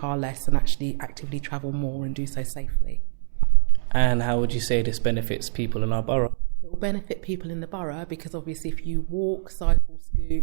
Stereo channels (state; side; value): silent; left; 62 dB below the other